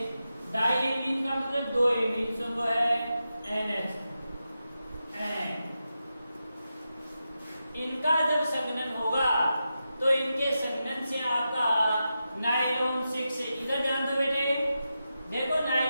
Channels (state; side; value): inverted; both; correlation -0.89